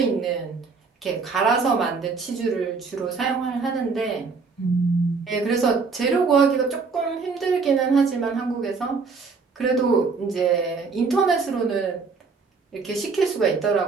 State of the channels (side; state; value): left; quieter; 4.7 dB